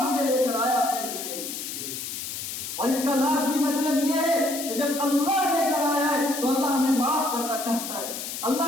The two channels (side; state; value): left; noise; hiss, 6 dB below the sound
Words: لے کر آیا اپنے گھر کے اندر۔ اور اس کا لازمی مطلب یہ ہے کہ جب اللہ لے کر آیا ہے تو اللہ ہمیں معاف کرنا چاہتا ہے،